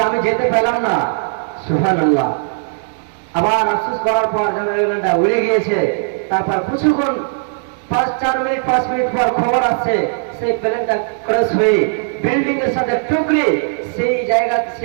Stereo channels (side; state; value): left; silent; 68 dB below the other